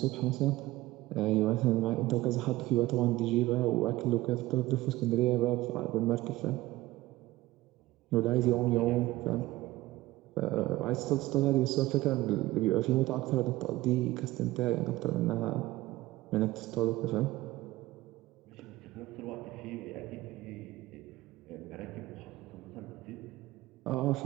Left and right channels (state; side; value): quieter; left; 17.8 dB